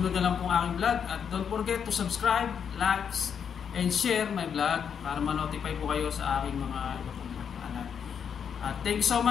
na lang pong aking vlog at don't forget to subscribe, likes, and share my vlog para ma-notify po kayo sa aking mga iba pong vlog. Thank you so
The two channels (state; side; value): quieter; right; 7.5 dB